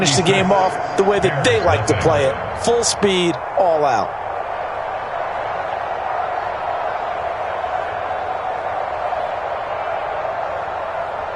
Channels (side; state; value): both; identical; correlation 1.00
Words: the game off the way that they like to play it. Full speed, all out.